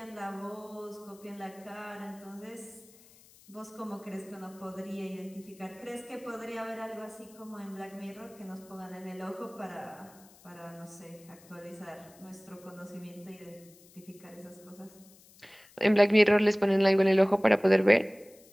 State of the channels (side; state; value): left; noise; hiss, 25 dB below the sound